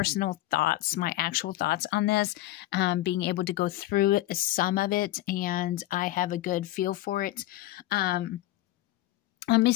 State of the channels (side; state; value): right; quieter; 15.9 dB